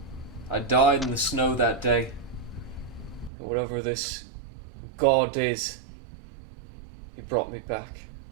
I died in the snow that day. And whatever this God is, he brought me back.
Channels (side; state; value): left; drops out; at 3.3 s